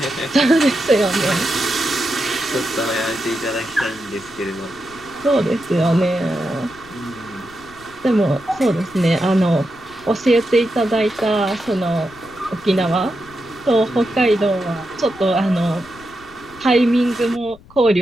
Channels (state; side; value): noise; left; rumble, 23 dB below the sound